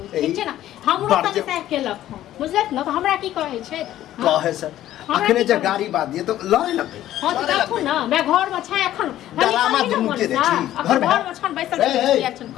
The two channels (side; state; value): right; quieter; 13.1 dB